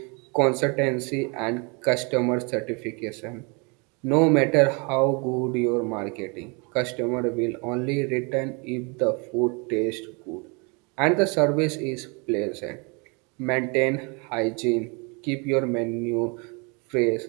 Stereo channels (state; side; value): quieter; left; 31.6 dB